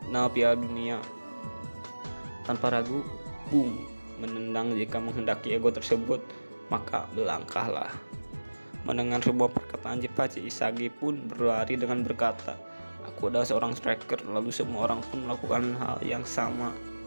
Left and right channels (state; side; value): inverted; both; correlation -1.00